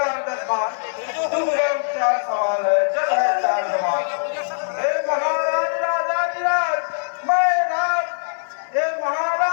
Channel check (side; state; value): right; silent; 57 dB below the other